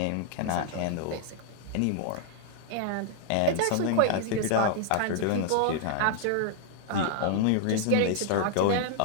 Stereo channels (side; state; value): both; different; correlation 0.00